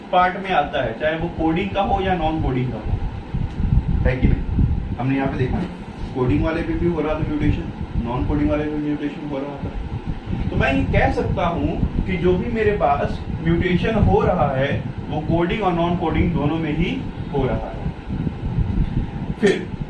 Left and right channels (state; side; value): identical; both; correlation 1.00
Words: पार्ट में आता है, चाहे वो कोडिंग का हो या नॉन कोडिंग का हो, है कि नहीं? हमने यहाँ पे देखा कोडिंग वाले पे भी हो रहा था म्यूटेशन, नॉन कोडिंग वाले पे म्यूटेशन हो रहा था। तो मैं ये कह सकता हूं कि जो भी मेरे पास म्यूटेशन हो रहा है वो कोडिंग और नॉन कोडिंग दोनों में ही हो रहा है। फिर